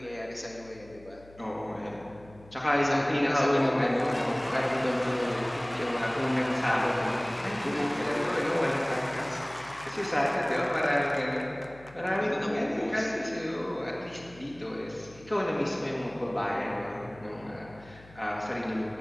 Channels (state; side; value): noise; left; hum, 22 dB below the sound